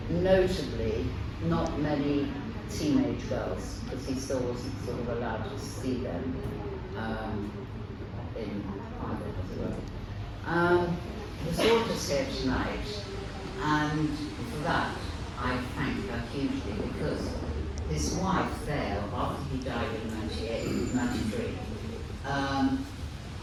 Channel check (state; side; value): identical; both; correlation 1.00